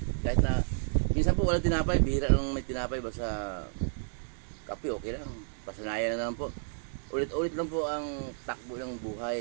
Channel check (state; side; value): silent; left; 57 dB below the other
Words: Kahit na minsan po walang tinapay, bihira lang may tinapay. Basta kape okay lang. Pasanayan na lang po. Ulit-ulit lang po ang takbo ng